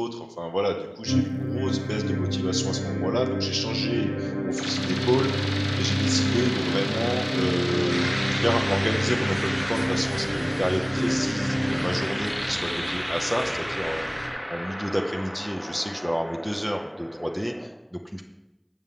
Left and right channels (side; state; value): both; identical; correlation 1.00